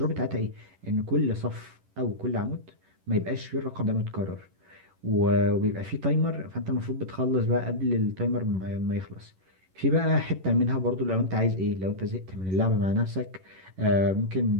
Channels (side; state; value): left; late; 11 ms